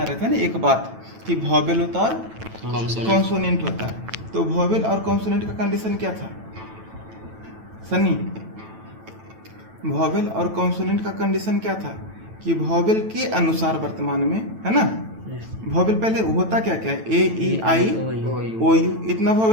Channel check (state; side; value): late; left; 9.1 ms